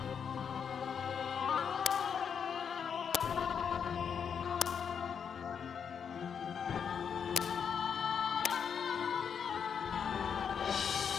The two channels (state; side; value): quieter; right; 7.2 dB